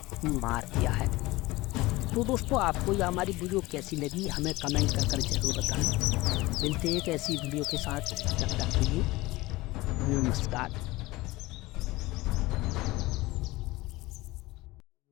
मार दिया है। तो दोस्तों आपको यह हमारी वीडियो कैसी लगी हमें कमेंट कर ज़रूर बताएं। मिलते हैं एक ऐसी वीडियो के साथ, तब तक के लिए नमस्कार।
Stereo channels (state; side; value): quieter; right; 20.0 dB